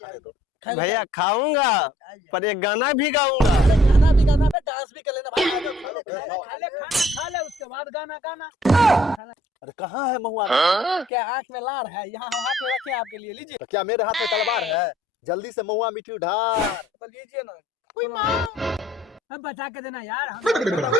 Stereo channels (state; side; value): normal; both; correlation 0.60